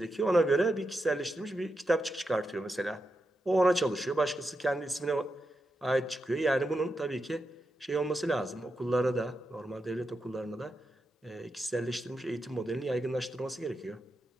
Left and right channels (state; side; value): normal; both; correlation 0.87